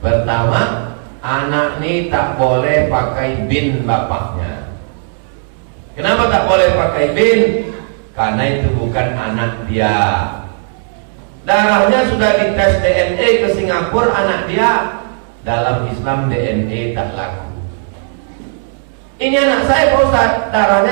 anak ini tak boleh pakai bin bapaknya. Kenapa tak boleh pakai bin? Karena itu bukan anak dia. Darahnya sudah dites DNA ke Singapura, anak dia. Dalam Islam DNA tak laku. Ini anak saya Pak Ustaz,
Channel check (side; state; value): left; silent; digital silence